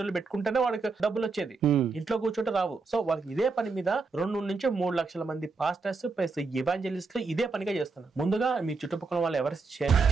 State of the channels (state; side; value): quieter; left; 4.2 dB